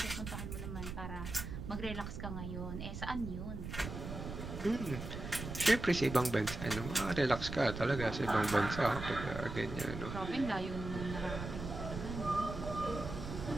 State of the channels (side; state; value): right; noise; rumble, 7 dB below the sound